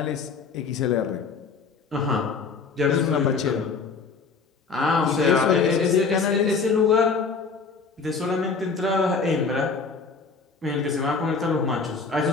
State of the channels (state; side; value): quieter; right; 4.9 dB